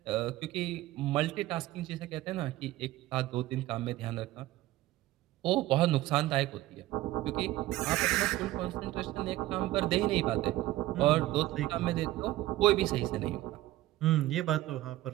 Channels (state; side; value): quieter; left; 16.4 dB